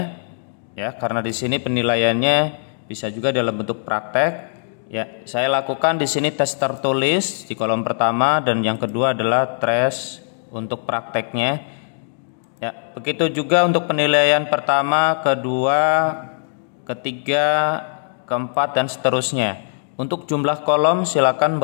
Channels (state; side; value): silent; right; digital silence